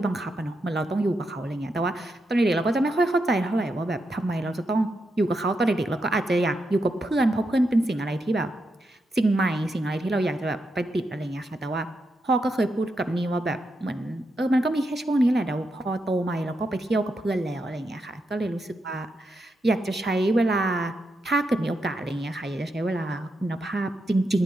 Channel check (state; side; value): normal; both; correlation 0.84